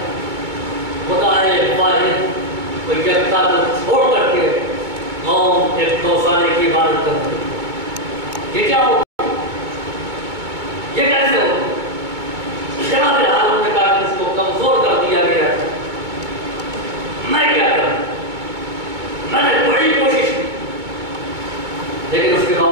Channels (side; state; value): left; late; 2.2 ms